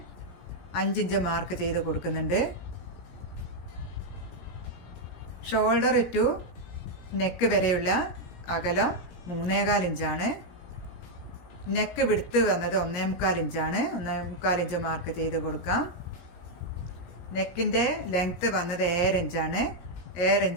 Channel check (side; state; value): right; late; 17 ms